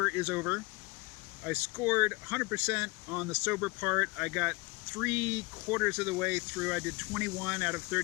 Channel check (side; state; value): right; quieter; 25.4 dB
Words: is over. I scored 100% on the sober part. I got 3/4 of the way through. I did 21 out of